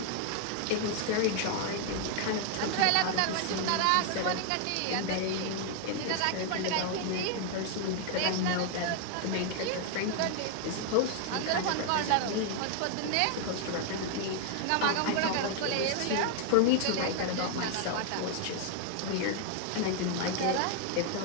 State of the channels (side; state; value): both; different; correlation 0.00